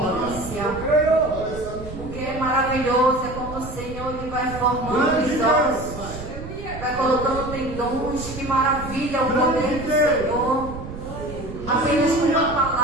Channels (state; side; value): noise; right; rumble, 11 dB below the sound